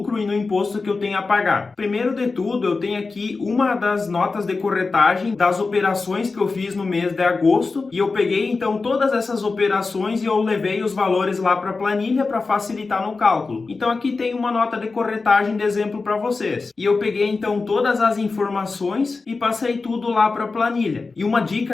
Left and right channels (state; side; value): quieter; right; 4.0 dB